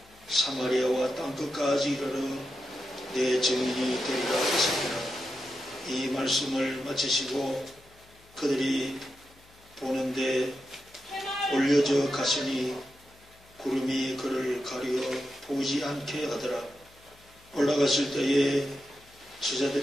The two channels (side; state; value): left; noise; hum, 27 dB below the sound